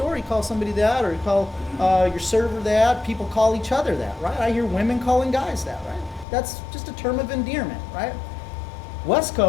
you call somebody that, or you call your server that. People call each other that, right? I hear women calling guys that, right? That's just a term of endearment, right? West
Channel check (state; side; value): drops out; right; at 6.2 s